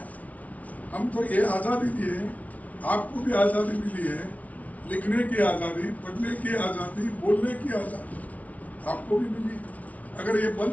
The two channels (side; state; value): right; late; 0.070 ms